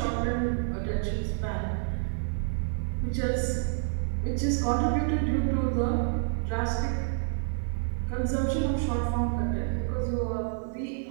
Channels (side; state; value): left; silent; digital silence